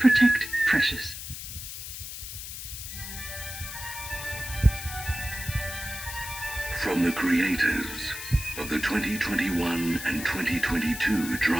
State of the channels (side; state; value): left; noise; hiss, 9 dB below the sound